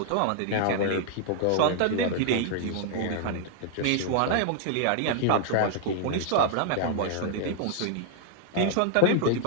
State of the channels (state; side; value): different; both; correlation -0.01